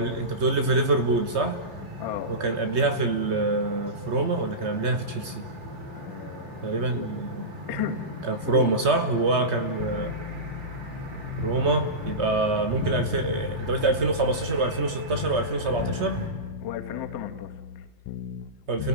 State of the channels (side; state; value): left; late; 3.2 ms